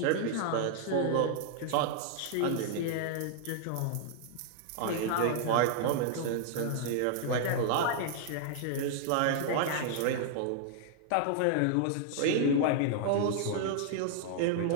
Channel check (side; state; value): both; different; correlation -0.01